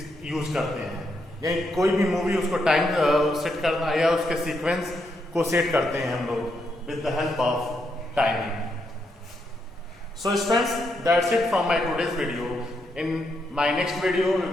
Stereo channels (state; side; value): normal; both; correlation 0.79